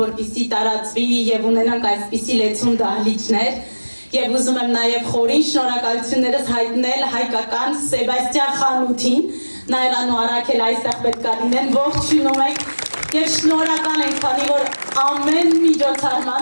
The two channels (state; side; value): inverted; both; correlation -1.00